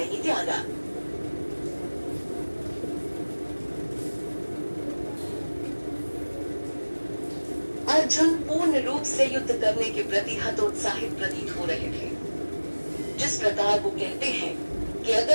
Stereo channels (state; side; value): inverted; both; correlation -1.00